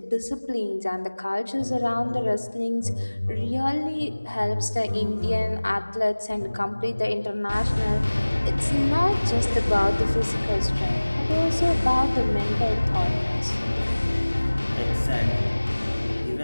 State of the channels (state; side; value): inverted; both; correlation -1.00